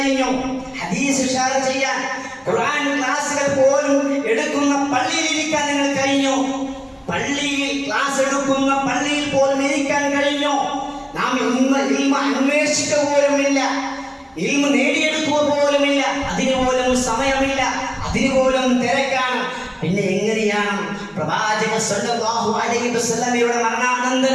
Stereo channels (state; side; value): identical; both; correlation 1.00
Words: ഹദീസ് ഷെയർ ചെയ്യാൻ, ഖുർആൻ ക്ലാസുകൾ പോലും എടുക്കുന്ന പള്ളിയിൽ ഇരിക്കാൻ നിങ്ങൾ കഴിഞ്ഞു? പള്ളിയിൽ ക്ലാസ് എടുക്കുന്ന പള്ളിയിൽ പോലും ഇരിക്കാൻ കഴിഞ്ഞു? നാം ഇൽമ അന്വേഷിക്കുക പോലുമില്ല, ഇൽമ നേടിയെടുക്കുക പോലുമില്ല, അതിന് പോലും സമയമില്ല, അതിന് പോലും തിരക്കാണ്. പിന്നെ എങ്ങനെയാണ് പ്രവാചകൻ സല്ലല്ലാഹു അലൈഹി വസല്ലമയുടെ